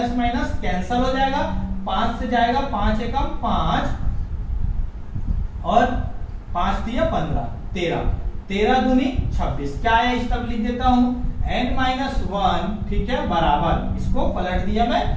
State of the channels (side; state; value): both; identical; correlation 1.00